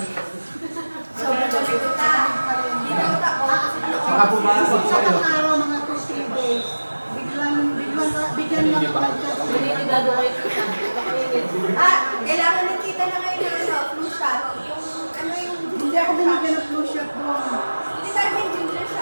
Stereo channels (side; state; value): both; inverted; correlation -1.00